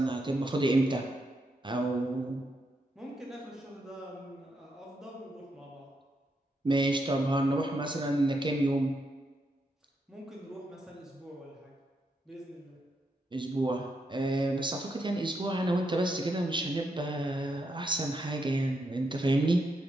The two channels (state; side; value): normal; both; correlation 0.81